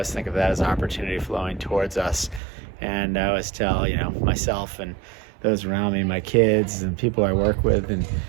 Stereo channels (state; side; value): drops out; left; at 2.4 s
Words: think of that as opportunity flowing towards us. And I always tell myself and those around me, my kids and people I work with, and